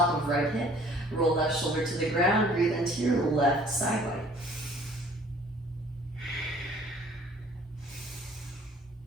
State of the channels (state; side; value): normal; both; correlation 0.54